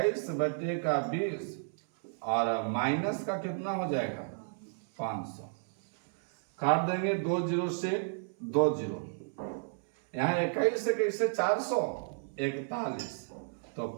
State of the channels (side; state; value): left; silent; 56 dB below the other